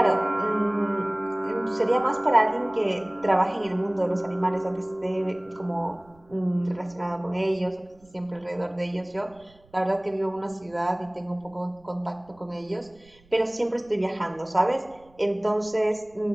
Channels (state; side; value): noise; right; rumble, 29 dB below the sound